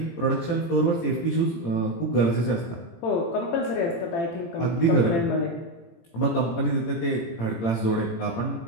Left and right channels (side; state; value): right; late; 18 ms